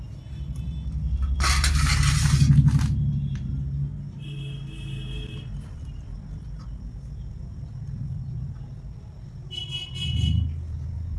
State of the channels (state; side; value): identical; both; correlation 1.00